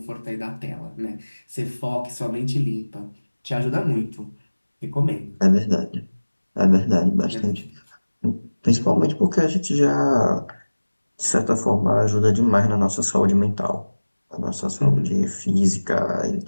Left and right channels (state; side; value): inverted; both; correlation -1.00